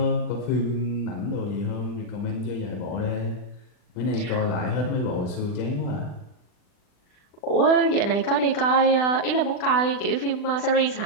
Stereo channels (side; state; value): right; late; 39 ms